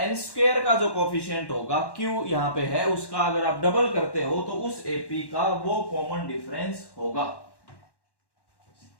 स्क्वायर का जो कोफिशिएंट होगा क्यू यहां पे है, उसका अगर आप डबल करते हो तो उस एपी का वो कॉमन डिफरेंस होगा।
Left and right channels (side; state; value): right; late; 1.1 ms